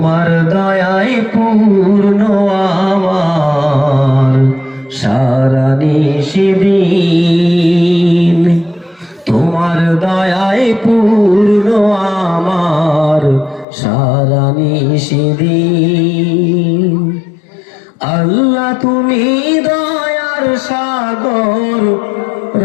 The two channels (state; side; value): drops out; right; at 13.7 s